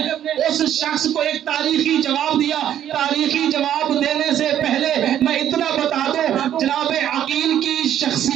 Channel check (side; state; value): left; quieter; 10.7 dB